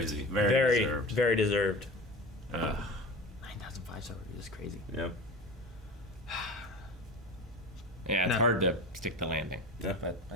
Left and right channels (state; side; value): normal; both; correlation 0.32